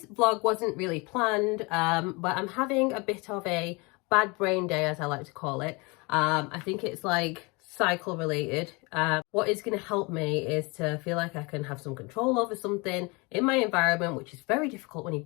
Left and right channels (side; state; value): right; quieter; 27.5 dB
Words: vlog wasn't really planned, but I'm having a bit of a bad brain day, as I like to call it. I think it's like cycle related. What is going to help me is to feel like I can have some control over something in my environment, which is very difficult when